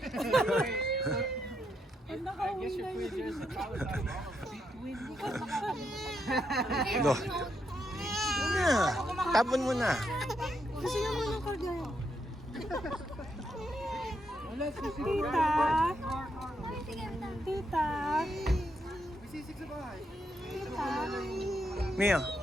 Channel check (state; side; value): normal; both; correlation 0.79